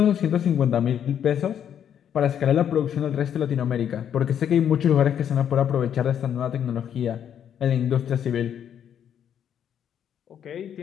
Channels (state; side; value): quieter; right; 9.1 dB